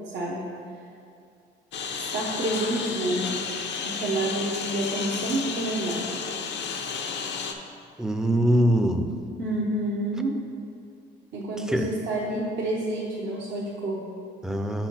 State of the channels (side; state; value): both; normal; correlation 0.57